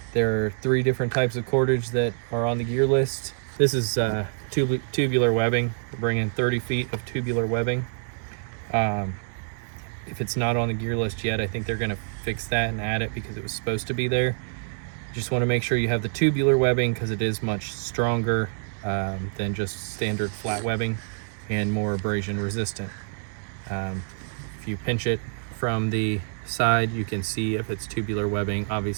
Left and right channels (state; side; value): silent; left; digital silence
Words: there are 3 different types of cordage that are on the gear list. This is tubular webbing. We're bringing 30 feet of tubular webbing. If it's not on the gear list yet, I think they're going to fix that and add it because it was supposed to be there. Just want to make sure you have the tubular webbing because it is much stronger than just standard flat webbing and more abrasion resistant. If you pinch it from the side, you can see if it's tubular webbing.